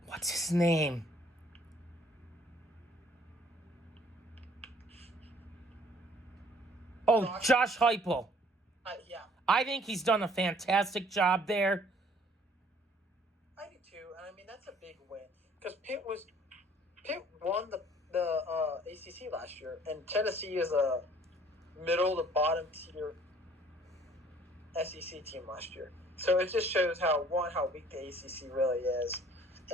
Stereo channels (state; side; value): normal; both; correlation 0.57